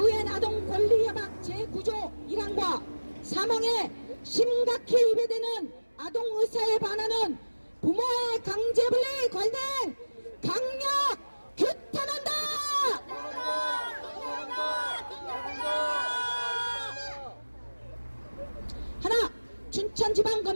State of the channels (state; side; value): inverted; both; correlation -1.00